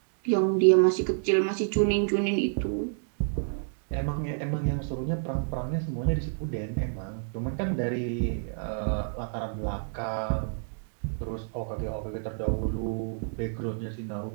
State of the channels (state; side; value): silent; left; digital silence